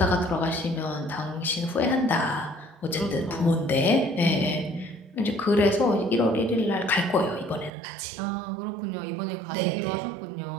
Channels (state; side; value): drops out; left; at 7.7 s